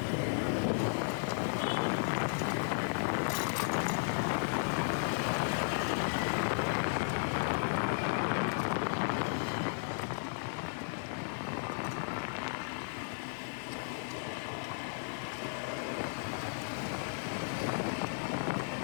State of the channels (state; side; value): silent; right; digital silence